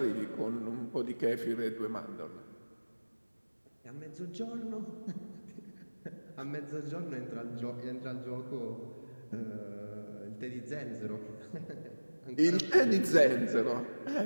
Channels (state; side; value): inverted; both; correlation -1.00